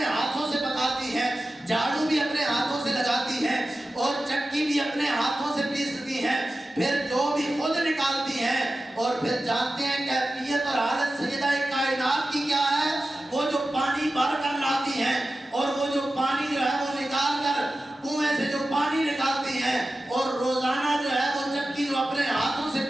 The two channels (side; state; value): both; normal; correlation 0.94